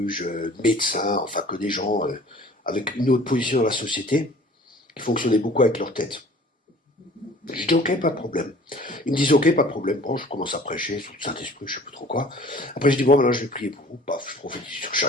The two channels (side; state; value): both; normal; correlation 0.49